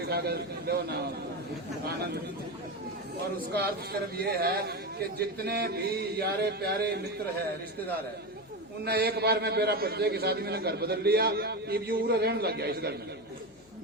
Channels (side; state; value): left; noise; hum, 30 dB below the sound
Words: खा कर लो ना आनंद। और उसका अर्थ सिर्फ ये है कि जितने भी यारे प्यारे मित्र है, रिश्तेदार है, उनने एक बार में मेरा बच्चे की शादी में घर बदल लिया, ये पूरा रहने लग गया इस घर में,